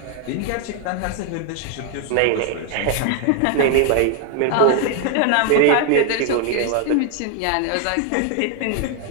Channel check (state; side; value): different; both; correlation 0.00